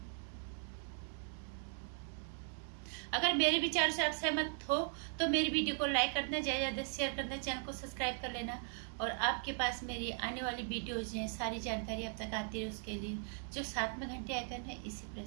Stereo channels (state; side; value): silent; left; 52 dB below the other